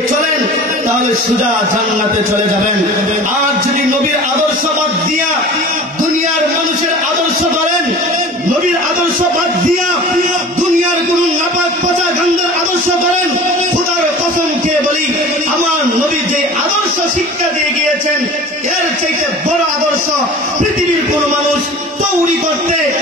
চলেন, তাহলে সোজা জান্নাতে চলে যাবেন। আর যদি নবীর আদর্শ বাদ দিয়া দুনিয়ার মানুষের আদর্শ ধরেন, নবীর আদর্শ বাদ দিয়া দুনিয়ার কোন নাপাক পচা গান্ধার আদর্শ ধরেন, খোদার কসম খেয়ে বলি, আমার নবী যে আদর্শ শিক্ষা দিয়ে গিয়েছেন, এর চাইতে বড় আদর্শ পৃথিবীর কোন মানুষ তৈরি করতে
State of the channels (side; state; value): both; normal; correlation 0.40